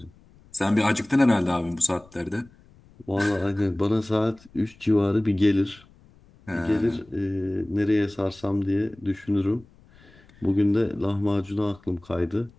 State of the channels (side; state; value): left; noise; rumble, 27 dB below the sound